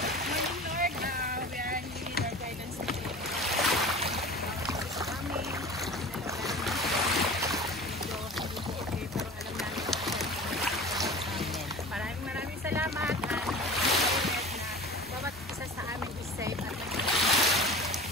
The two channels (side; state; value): both; normal; correlation 0.38